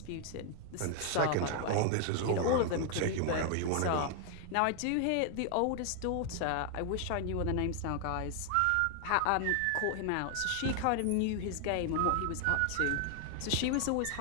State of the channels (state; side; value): different; both; correlation 0.00